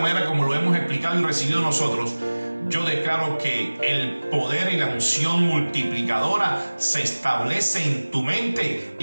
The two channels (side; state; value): both; inverted; correlation -1.00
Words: como lo hemos explicado y recibido nosotros, yo declaro que el poder y la unción multiplicadora se establece en tu mente,